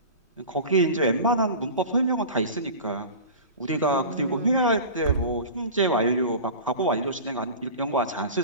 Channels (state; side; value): inverted; both; correlation -0.34